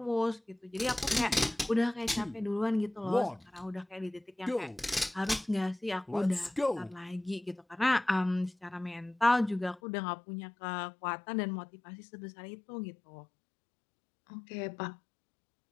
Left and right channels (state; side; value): drops out; right; at 9.8 s